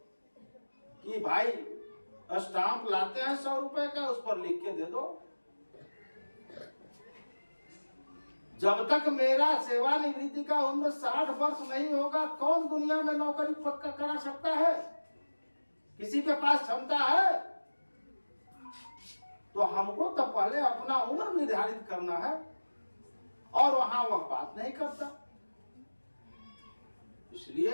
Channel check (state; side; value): inverted; both; correlation -1.00